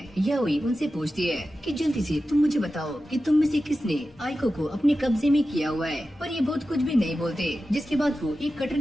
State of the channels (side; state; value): both; normal; correlation 0.93